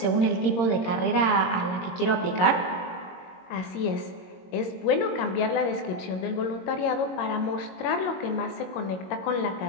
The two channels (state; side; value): late; right; 22 ms